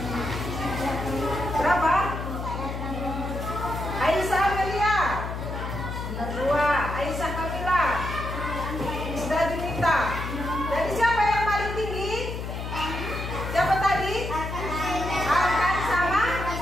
Berapa? Aisyah Amelia. 2. Aisyah Kamila. Sudah diminta. Jadi siapa yang paling tinggi? Siapa tadi? Arkan sama?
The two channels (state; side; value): noise; left; hum, 5 dB below the sound